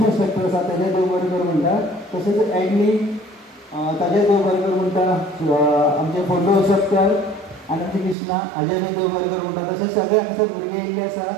इंस्ट्रक्टर आसा तेजे देव बरें करूं म्हणटा. तशेंच एडनी ताजे देव बरें करूं म्हणटा. आमचे फोटो इंस्ट्रक्टर आनंद कृष्णा हाजे बी देव बरें करूं म्हणटा. तशेंच सगळे हांगसर भुरगे येयल्ले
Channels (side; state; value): left; drops out; at 8.2 s